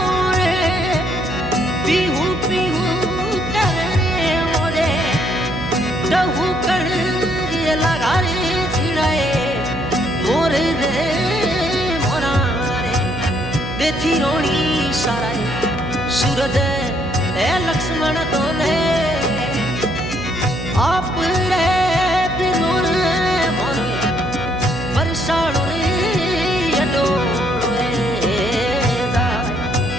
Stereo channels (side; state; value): right; noise; hum, 8 dB below the sound